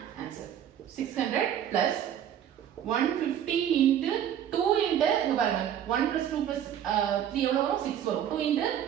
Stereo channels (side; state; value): left; quieter; 10.0 dB